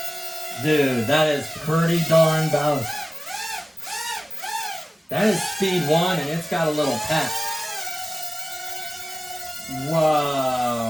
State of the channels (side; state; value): both; normal; correlation 0.97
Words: Dude, that is pretty darn balanced. That is speed 1, and it's got a little pep.